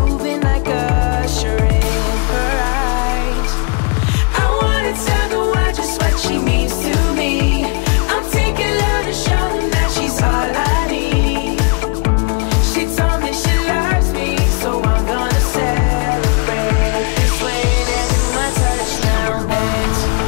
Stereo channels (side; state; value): right; quieter; 32.9 dB